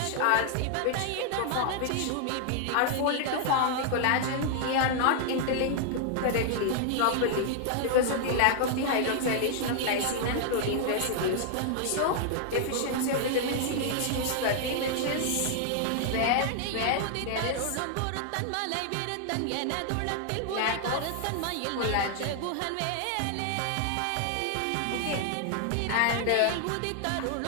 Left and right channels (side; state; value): both; different; correlation 0.00